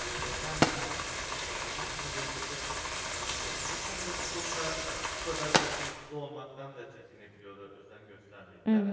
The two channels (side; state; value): both; identical; correlation 1.00